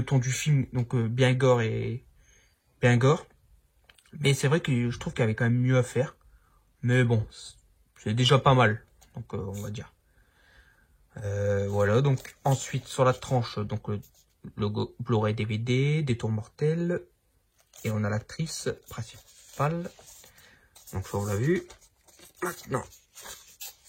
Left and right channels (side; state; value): both; identical; correlation 1.00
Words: ton du film, donc bien gore et bien gore. Mais c'est vrai que je trouve qu'il y avait quand même mieux à faire. Mais bon, c'est déjà pas mal. Donc on va dire. Voilà, donc ensuite sur la tranche, donc le logo Blu-ray DVD, Des Tours Mortels. Et on a l'actrice principale. Donc ça on l'a vu. Maintenant,